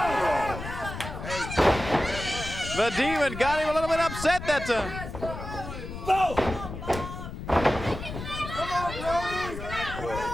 The Demon got him a little bit upset that time.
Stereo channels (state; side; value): noise; left; rumble, 9 dB below the sound